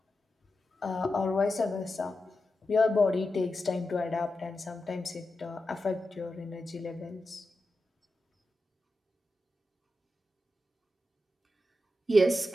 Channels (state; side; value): normal; both; correlation 0.90